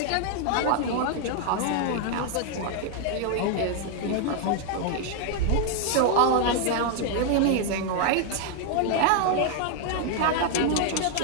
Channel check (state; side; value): different; both; correlation 0.00